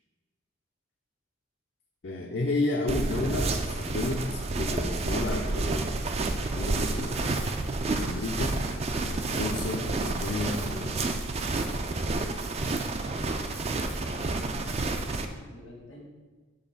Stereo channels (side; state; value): both; normal; correlation 0.58